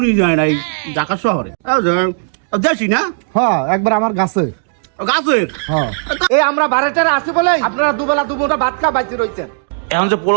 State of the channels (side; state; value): left; silent; digital silence